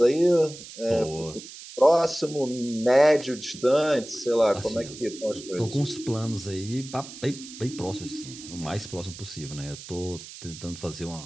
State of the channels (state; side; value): noise; right; hiss, 14 dB below the sound